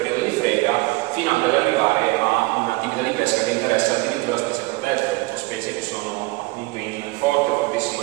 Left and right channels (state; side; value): quieter; left; 23.7 dB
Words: di frega, fino anche ad arrivare a un'attività di pesca che interessa addirittura specie protette, o specie che sono appunto in fortissimo